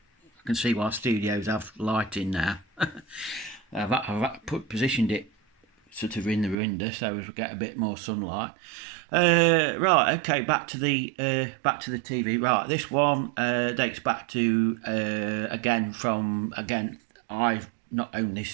can see why studios have lighting now. Positioned it sort of in the window so as we get a bit more sunlight. Right, okay, back to the TV. Right, this one dates back to I've not owned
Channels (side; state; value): left; drops out; at 6.6 s